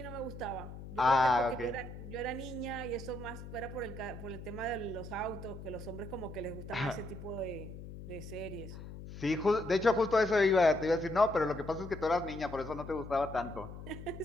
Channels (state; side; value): noise; left; hum, 12 dB below the sound